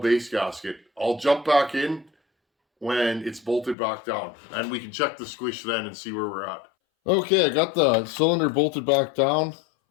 gasket. I'll jump back in when it's bolted back down, and we can check the squish then and see where we're at. Okay, I got the cylinder bolted back down.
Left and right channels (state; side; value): drops out; right; at 3.8 s